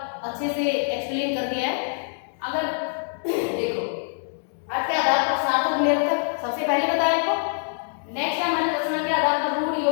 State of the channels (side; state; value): right; silent; digital silence